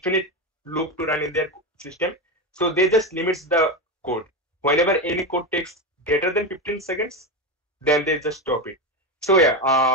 loop to run in their system. So they just limits the code. Whenever any code takes greater than 15 seconds, then they just stop it. So yeah,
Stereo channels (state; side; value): normal; both; correlation 0.15